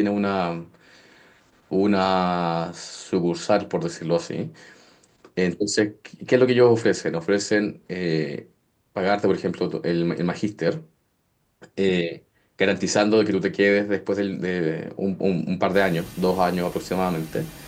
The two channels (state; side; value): identical; both; correlation 1.00